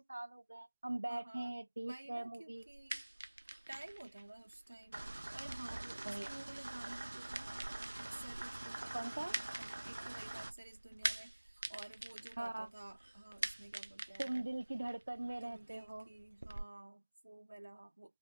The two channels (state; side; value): inverted; both; correlation -1.00